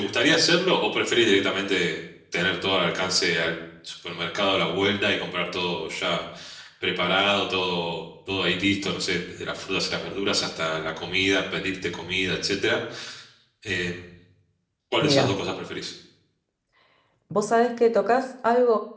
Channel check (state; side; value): identical; both; correlation 1.00